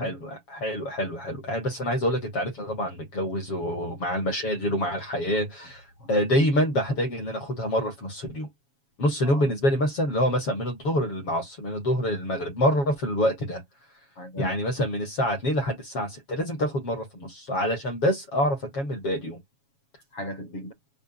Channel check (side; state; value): right; late; 7.2 ms